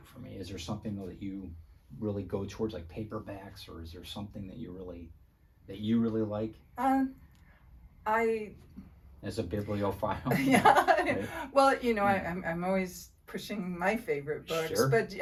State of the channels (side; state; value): both; identical; correlation 1.00